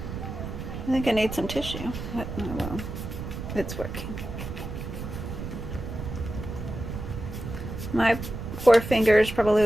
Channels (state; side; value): noise; right; rumble, 7 dB below the sound